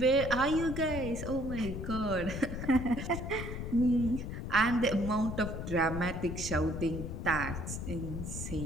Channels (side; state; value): left; noise; rumble, 6 dB below the sound